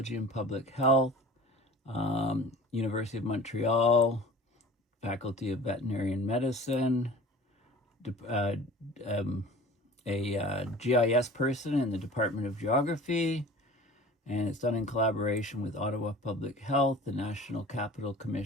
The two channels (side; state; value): both; normal; correlation 0.42